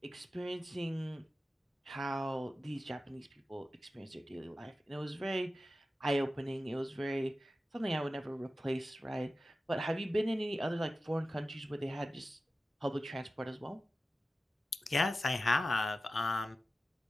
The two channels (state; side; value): normal; both; correlation 0.94